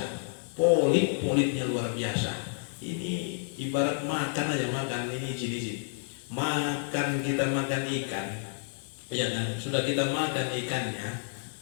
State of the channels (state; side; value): silent; right; digital silence